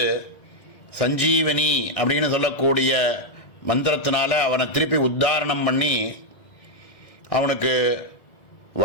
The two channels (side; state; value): right; late; 1.9 ms